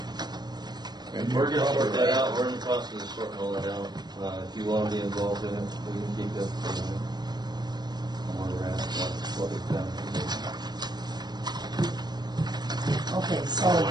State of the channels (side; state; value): left; late; 0.20 ms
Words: And We're you're gonna sort probably that right. out, we're in the process of sorting all that out. If you wanna be involved in it, we can keep that for you. Where we're at, what we've done. Okay, so,